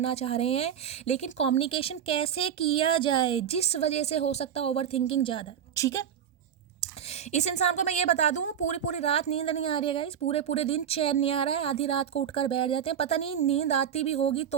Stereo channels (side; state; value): left; quieter; 8.9 dB